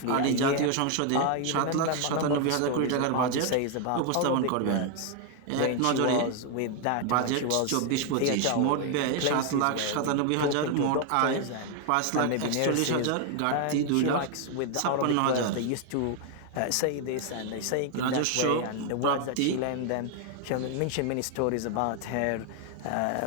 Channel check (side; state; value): both; different; correlation 0.00